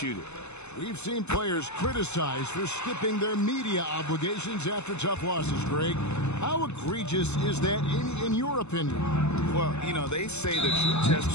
it. We've seen players criticized for skipping their media obligations after tough losses, Greg. How egregious is that in your opinion? Well, you know, they say the true test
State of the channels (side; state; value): right; late; 0.82 ms